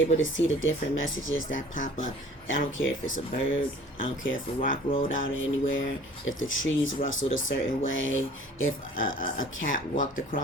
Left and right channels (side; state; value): both; normal; correlation 0.49